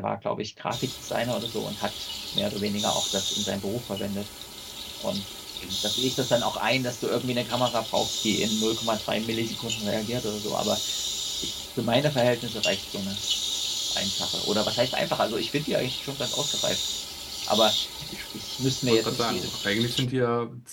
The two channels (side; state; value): both; identical; correlation 1.00